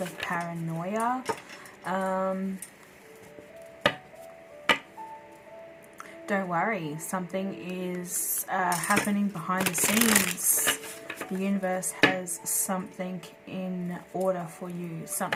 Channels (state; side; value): identical; both; correlation 1.00